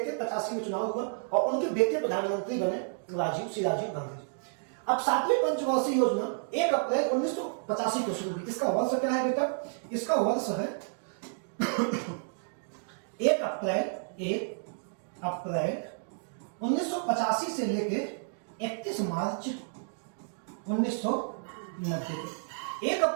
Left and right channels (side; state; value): left; silent; digital silence